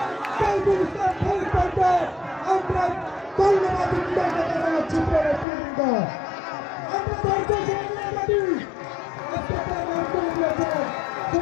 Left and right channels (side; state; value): right; drops out; at 5.5 s